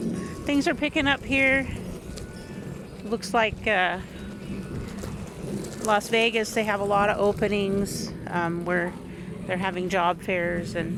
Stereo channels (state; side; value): identical; both; correlation 1.00